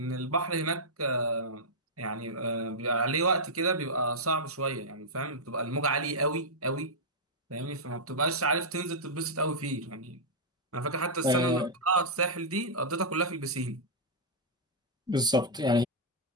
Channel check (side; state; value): both; normal; correlation -0.07